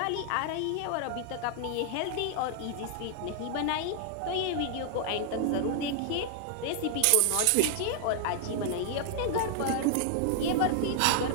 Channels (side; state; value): both; different; correlation 0.00